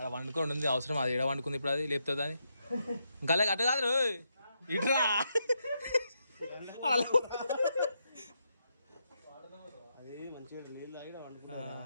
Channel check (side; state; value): both; inverted; correlation -0.81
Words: వండుకొని ఉంది అవసరం అది ఎడ వండుకుంది ఇప్పుడు అది లేపుతుంది అని ఇంకా అటు కాదు ఇట్రా